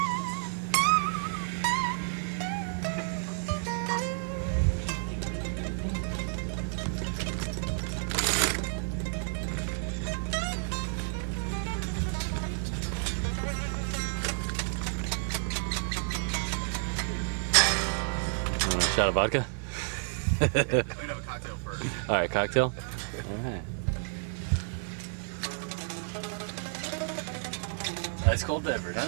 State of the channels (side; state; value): left; silent; digital silence